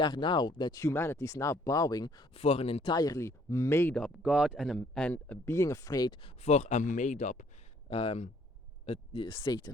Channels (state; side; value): normal; both; correlation 0.62